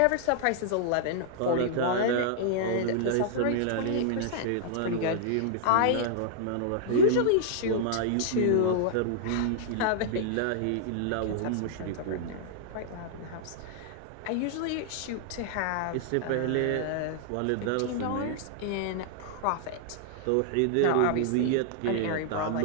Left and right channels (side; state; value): both; different; correlation -0.01